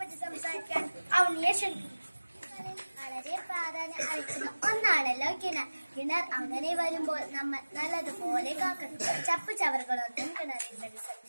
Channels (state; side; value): inverted; both; correlation -1.00